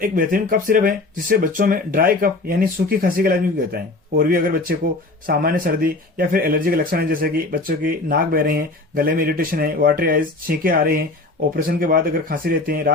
एक बेहतरीन cough syrup है जिससे बच्चों में ड्राई कफ यानी सूखी खांसी का इलाज भी होता है। और भी अगर बच्चे को सामान्य सर्दी या फिर एलर्जी के लक्षण है, जैसे कि बच्चों की नाक बह रहे हैं, गले में इरिटेशन है, वाटरी आइज, छींके आ रहे हैं, ऑपरेशन के बाद अगर खांसी रहती है,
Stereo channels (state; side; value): quieter; right; 3.2 dB